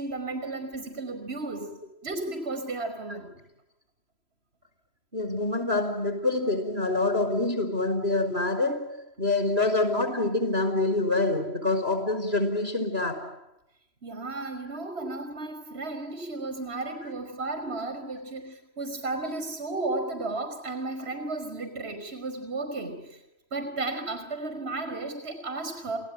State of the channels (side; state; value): left; late; 3.0 ms